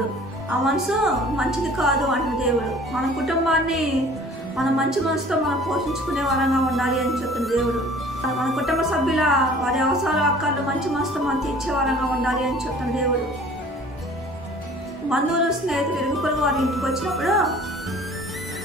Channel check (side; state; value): both; normal; correlation 0.49